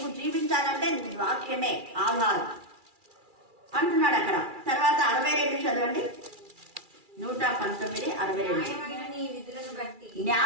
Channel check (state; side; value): late; left; 2.3 ms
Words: జీవించాలంటే వాక్యమే ఆధారం అంటున్నాడు అక్కడ. తర్వాత 62 చదవండి. 119:62.